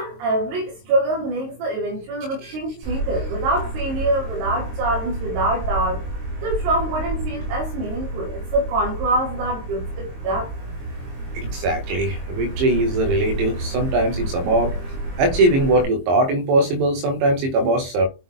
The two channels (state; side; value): late; left; 22 ms